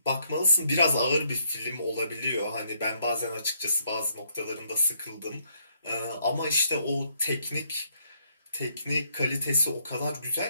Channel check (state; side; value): inverted; both; correlation -0.73